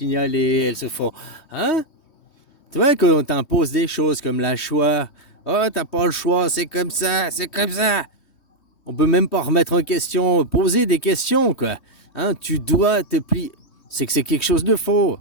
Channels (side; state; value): right; late; 3.2 ms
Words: elles se font... Hein? Tu vois qu'on t'impose des choses comme la choix. Oh, t'as pas le choix, c'est comme ça, c'est comme ça. On peut même pas remettre en question, poser des questions, quoi. Hein, tu dois te plier. C'est que c'est quelque chose de faux.